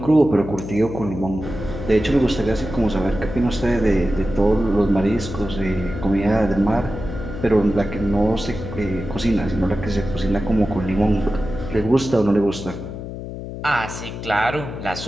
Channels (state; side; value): noise; left; hum, 9 dB below the sound